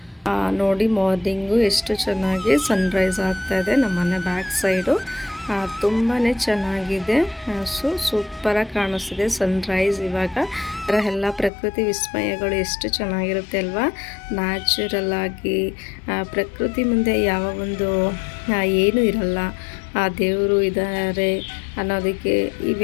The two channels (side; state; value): right; drops out; at 11.5 s